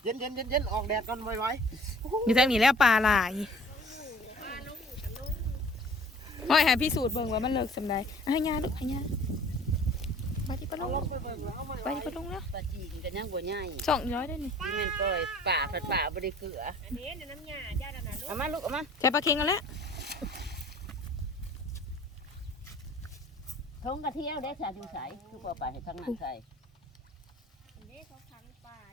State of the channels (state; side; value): normal; both; correlation 0.50